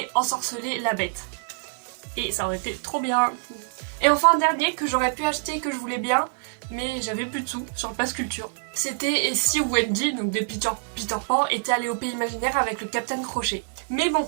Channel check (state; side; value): silent; left; 61 dB below the other